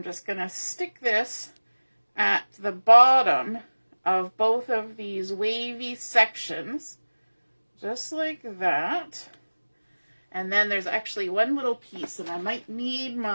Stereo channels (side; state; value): both; inverted; correlation -1.00